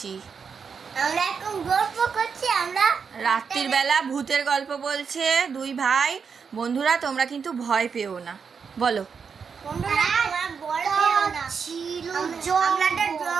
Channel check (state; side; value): quieter; left; 6.0 dB